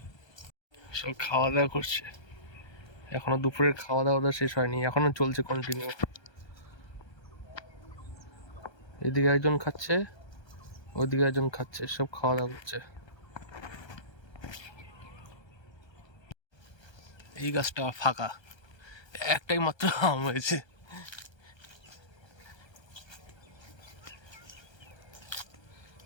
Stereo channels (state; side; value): late; right; 1.3 ms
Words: সব খাওয়া দাওয়া করছে, এখনো দুপুরের খাওয়া দাওয়া শেষ হয়নি, এখনো চলছে কন্টিনিউ। এদিকে একজন খাচ্ছে, ওইদিকে একজন খাচ্ছে, সব খাওয়া দাওয়া করছে। এই গাছটা ফাঁকা, একটাই মাত্র আম হয়েছে।